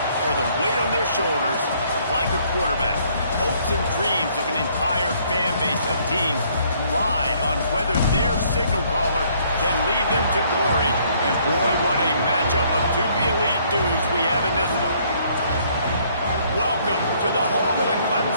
or the weight on their shoulders like a quarterback. Hopes and dreams of an entire fan base of teams ride on whether their signal caller can lead them to glory. And boy, what a matchup of two elite dudes we have in this one. Welcome to the home of the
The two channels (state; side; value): inverted; both; correlation -0.64